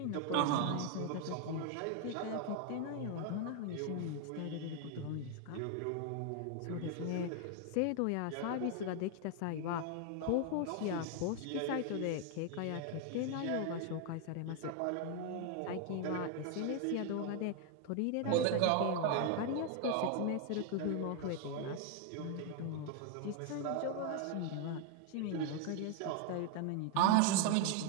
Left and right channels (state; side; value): different; both; correlation 0.01